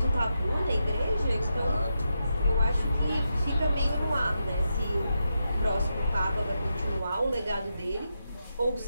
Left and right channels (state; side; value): inverted; both; correlation -0.86